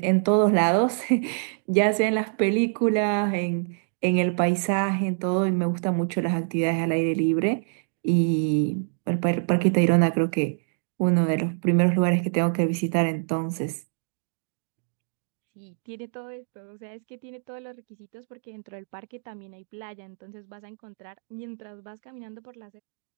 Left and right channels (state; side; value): silent; left; digital silence